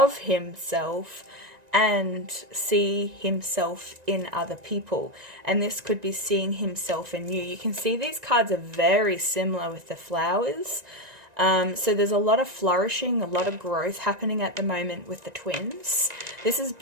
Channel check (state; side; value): late; left; 1.9 ms